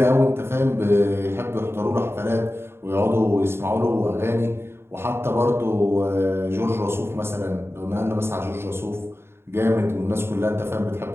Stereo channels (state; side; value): late; left; 0.12 ms